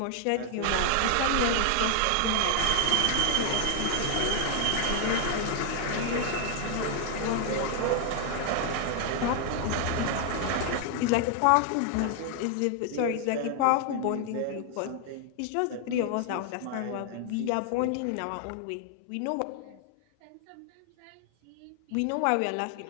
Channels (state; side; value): different; both; correlation 0.00